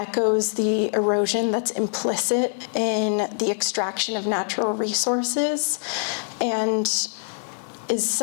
the erosion that's implicit in the extraction of natural resources and is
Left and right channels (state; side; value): silent; right; digital silence